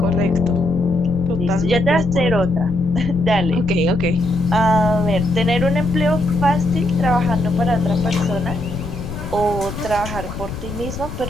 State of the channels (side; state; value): left; noise; rumble, 9 dB below the sound